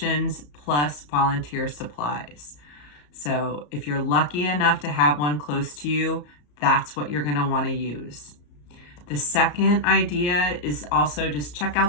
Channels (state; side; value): late; right; 34 ms